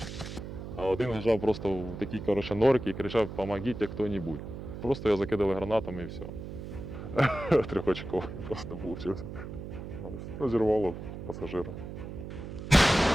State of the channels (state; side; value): noise; right; hum, 9 dB below the sound